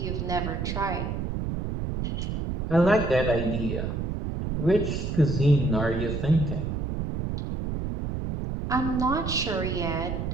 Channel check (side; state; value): right; noise; rumble, 3 dB below the sound